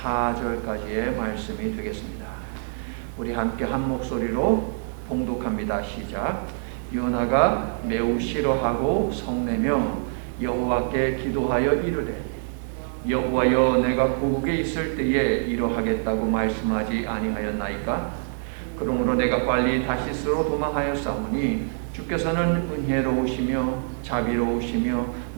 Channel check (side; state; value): left; silent; 62 dB below the other